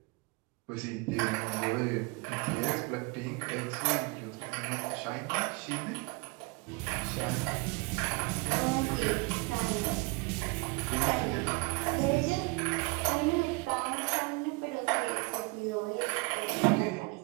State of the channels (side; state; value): left; quieter; 27.1 dB